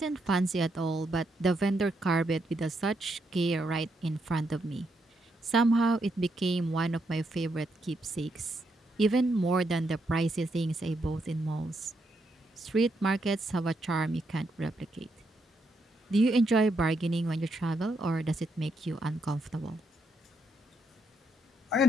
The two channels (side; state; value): both; normal; correlation 0.79